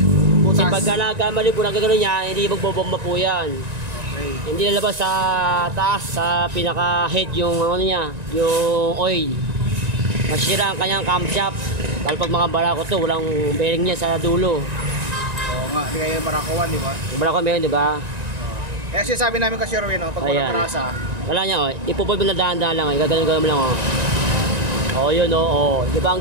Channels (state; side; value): late; left; 1.9 ms